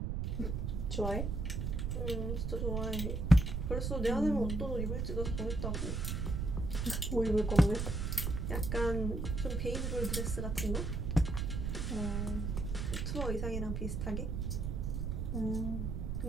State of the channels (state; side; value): noise; right; rumble, 1 dB below the sound